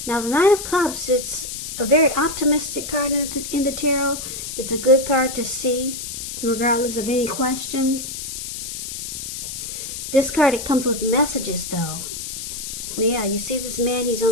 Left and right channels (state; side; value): noise; left; hiss, 7 dB below the sound